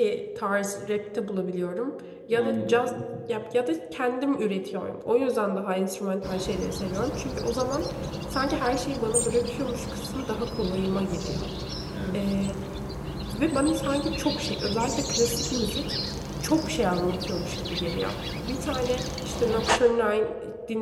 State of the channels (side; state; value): both; identical; correlation 1.00